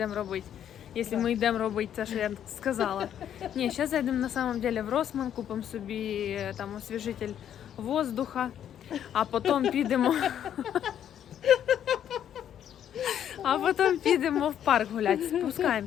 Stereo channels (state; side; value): quieter; right; 9.9 dB